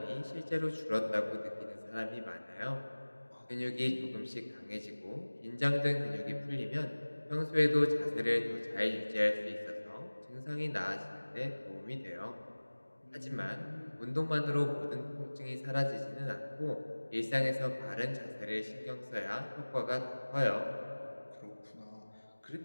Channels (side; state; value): both; inverted; correlation -1.00